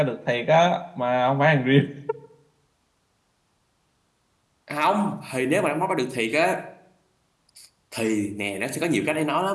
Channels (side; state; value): both; identical; correlation 1.00